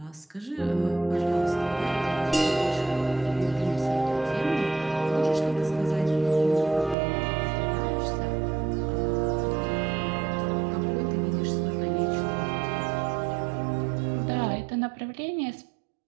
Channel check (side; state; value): left; drops out; at 7.0 s